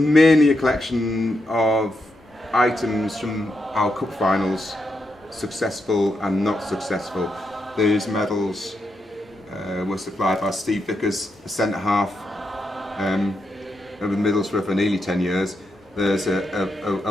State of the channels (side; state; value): both; normal; correlation 0.83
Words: a collection of items from our cup finals, successful and not successful. These medals were supplied by Steve Vickers, the centre half of Middlesbrough for nearly 10 years. There's